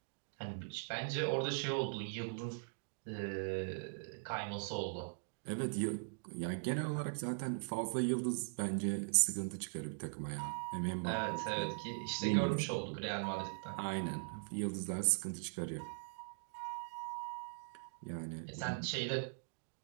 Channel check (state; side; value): silent; left; digital silence